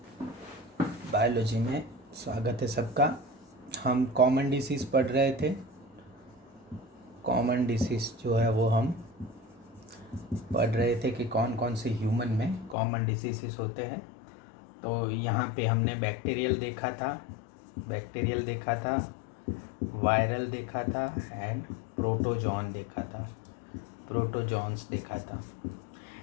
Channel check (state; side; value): drops out; right; at 12.8 s